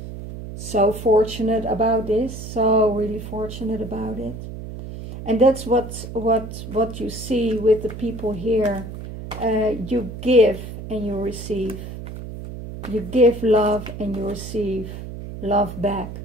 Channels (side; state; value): right; noise; hum, 10 dB below the sound